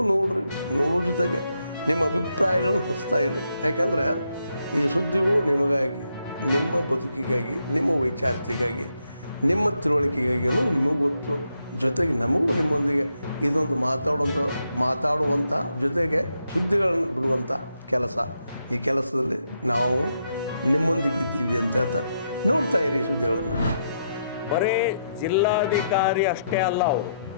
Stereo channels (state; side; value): inverted; both; correlation -0.80